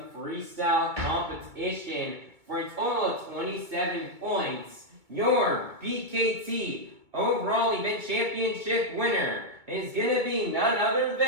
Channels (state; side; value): late; left; 2.2 ms